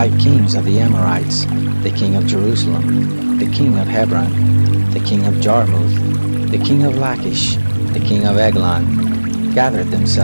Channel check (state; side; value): inverted; both; correlation -1.00